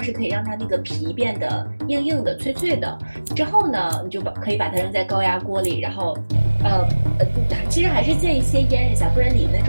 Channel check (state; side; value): inverted; both; correlation -1.00